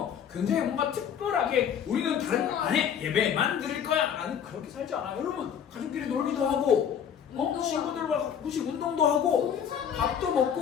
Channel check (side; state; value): right; quieter; 8.4 dB